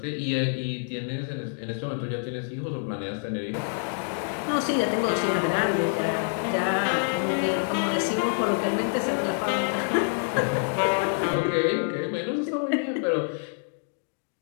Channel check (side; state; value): right; silent; digital silence